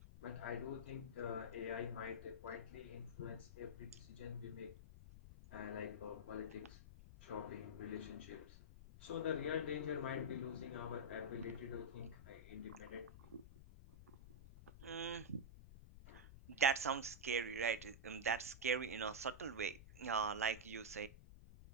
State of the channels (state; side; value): noise; left; rumble, 14 dB below the sound